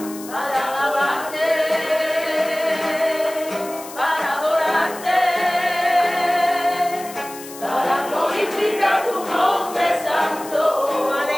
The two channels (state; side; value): noise; left; hiss, 15 dB below the sound